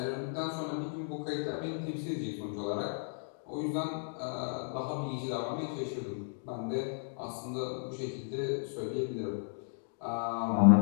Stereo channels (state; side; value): silent; right; digital silence